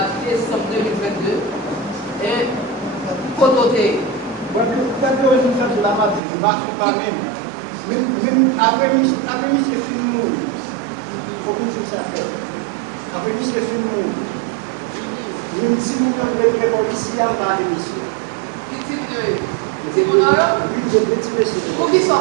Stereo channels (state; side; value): drops out; left; at 6.2 s